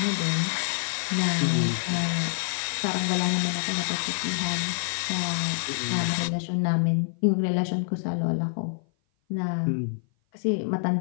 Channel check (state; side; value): silent; right; 56 dB below the other